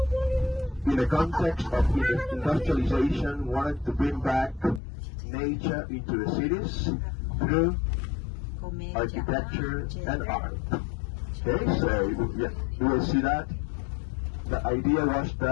in the context of industrialization, wanted to bring back nature into the cities through architecture and art. Okay, so you will see that. The idea was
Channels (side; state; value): right; drops out; at 4.8 s